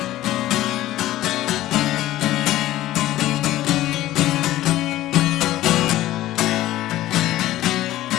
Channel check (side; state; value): right; quieter; 15.0 dB